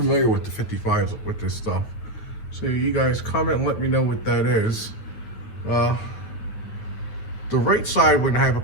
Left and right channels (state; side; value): late; right; 9.3 ms